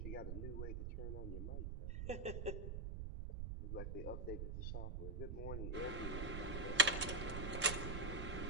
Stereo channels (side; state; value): right; noise; rumble, 3 dB below the sound